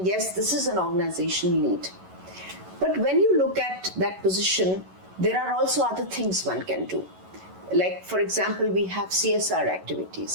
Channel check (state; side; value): late; left; 11 ms